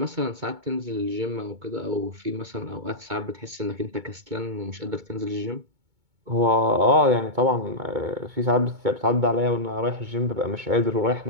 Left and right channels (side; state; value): left; late; 2.2 ms